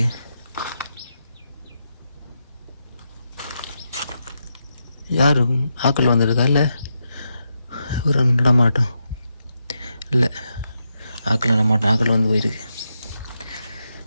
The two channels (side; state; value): both; inverted; correlation -0.85